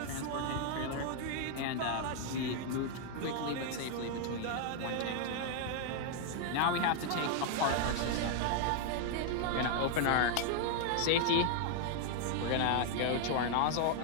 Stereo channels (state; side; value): different; both; correlation 0.00